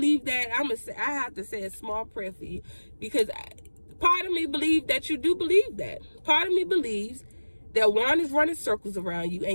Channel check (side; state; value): both; inverted; correlation -1.00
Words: that, I have to say a small prayer for you, because part of me believes that you do believe that. Part of me believes that Juan is running circles around you,